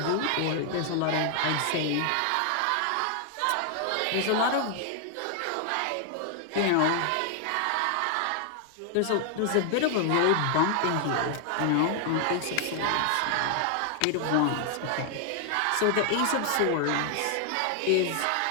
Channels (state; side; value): different; both; correlation 0.00